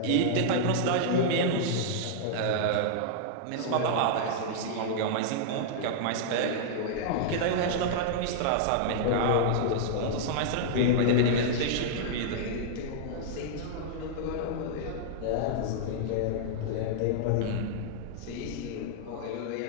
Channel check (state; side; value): different; both; correlation -0.01